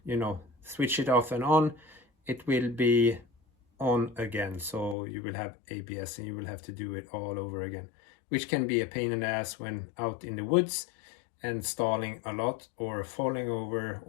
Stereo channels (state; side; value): drops out; right; at 5.0 s